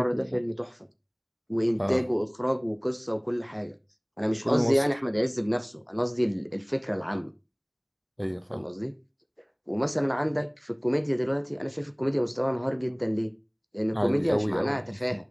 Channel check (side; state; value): both; identical; correlation 1.00